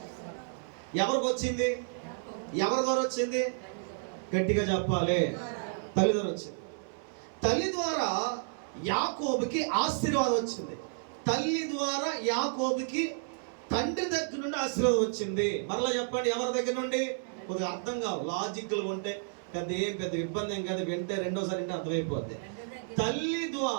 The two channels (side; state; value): left; silent; 57 dB below the other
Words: ఎవరికి వచ్చింది? ఎవరి ద్వారా వచ్చింది? గట్టిగా చెప్పాలి. తల్లి ద్వారా వచ్చింది. తల్లి ద్వారా యాకోబుకి ఆశీర్వాదం వచ్చింది. తల్లి ద్వారా యాకోబుకి తండ్రి దగ్గర నుండి ఆశీర్వాదం వచ్చింది. మరలా చెప్పండి, ఎవరి దగ్గర నుండి? కొద్దిగా అర్థం కావు, లాజిక్లు ఉంటే పెద్ద ఇబ్బంది ఏం కాదు. వింటే రెండోసారి అంటే అర్థమైపోద్ది. తల్లి